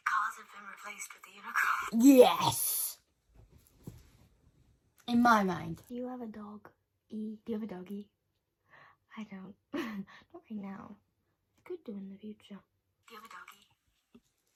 cars have been replaced with the unicorns. Yes! In my mind. Do you have a dog? Do you have a doggy? I don't. Not right now. I could do in the future. Do you have a doggy?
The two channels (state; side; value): identical; both; correlation 1.00